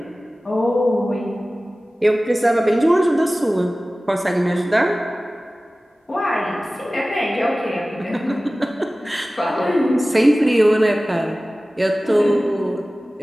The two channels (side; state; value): both; normal; correlation 0.97